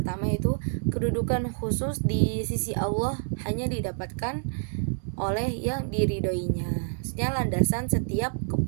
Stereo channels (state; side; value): silent; left; digital silence